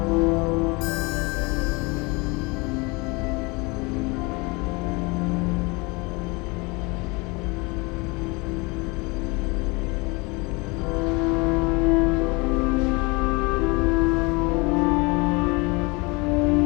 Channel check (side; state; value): right; quieter; 27.2 dB